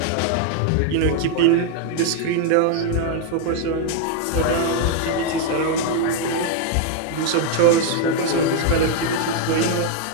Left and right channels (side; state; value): both; different; correlation 0.00